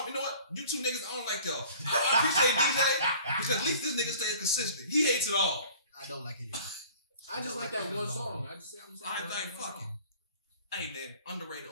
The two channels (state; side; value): inverted; both; correlation -0.48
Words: you know what? You two niggas, I don't like y'all. I appreciate DJ because at least this nigga stays consistent. He hates it all. I don't like it. I just like that one song. I'm just I like fuck it. Hey man, underrated,